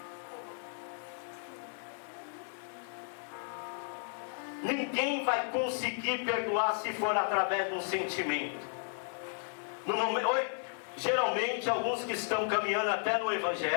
Ninguém vai conseguir perdoar se for através de um sentimento. Geralmente, alguns que estão caminhando até no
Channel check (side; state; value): right; silent; 55 dB below the other